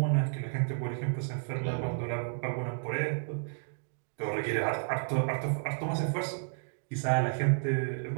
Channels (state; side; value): silent; left; digital silence